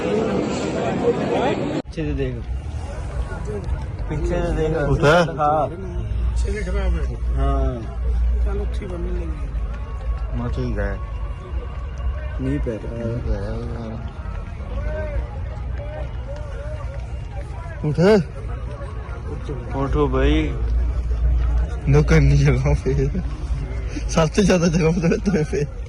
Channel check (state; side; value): identical; both; correlation 1.00